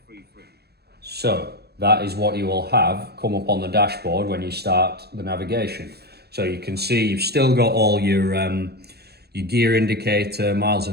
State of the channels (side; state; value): left; late; 0.47 ms